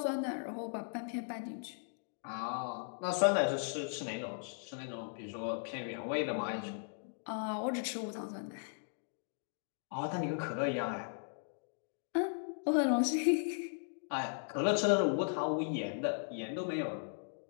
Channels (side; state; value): right; silent; digital silence